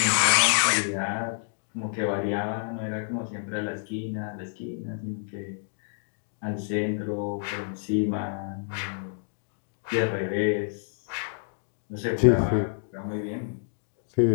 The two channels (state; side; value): silent; right; digital silence